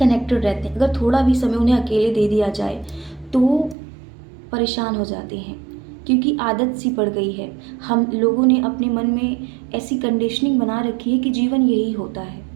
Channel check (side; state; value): left; drops out; at 3.8 s